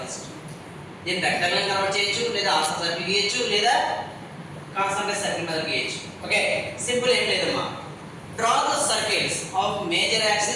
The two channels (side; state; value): both; identical; correlation 1.00